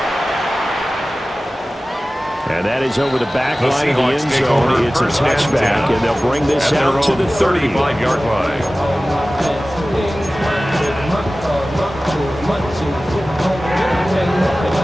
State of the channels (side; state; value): both; normal; correlation 0.97